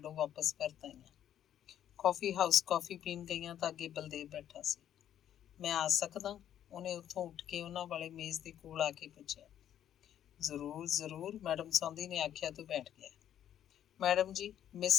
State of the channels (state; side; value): quieter; right; 10.6 dB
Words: ਵਾਪਸ ਪਰਤ ਆਈਆਂ। ਕੌਫੀ ਹਾਊਸ ਕੌਫੀ ਪੀਣ ਗਈਆਂ ਤਾਂ ਅੱਗੇ ਬਲਦੇਵ ਬੈਠਾ ਸੀ। ਮੈਂ ਆ ਸਕਦਾ? ਉਹਨੇ ਉੱਥੋਂ ਉੱਠ ਕੇ ਉਹਨਾਂ ਵਾਲੇ ਮੇਜ਼ ਦੇ ਕੋਲ ਆ ਕੇ ਪੁੱਛਿਆ। ਜ਼ਰੂਰ ਜ਼ਰੂਰ, ਮੈਡਮ ਸੌਂਦੀ ਨੇ ਆਖਿਆ ਤੋਂ ਬੈਠ ਗਿਆ। ਮੈਡਮ ਜੀ, ਮਿਸ